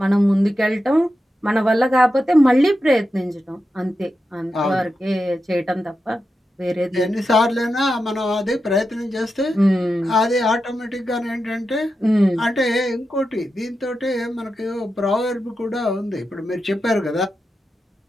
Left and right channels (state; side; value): normal; both; correlation 0.89